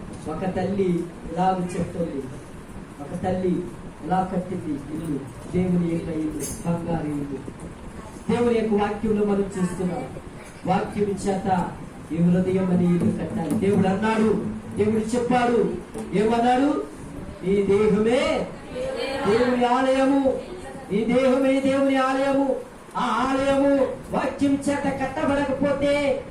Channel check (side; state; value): both; identical; correlation 1.00